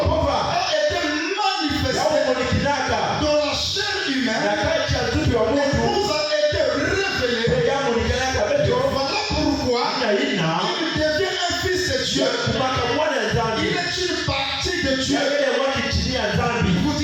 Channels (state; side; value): identical; both; correlation 1.00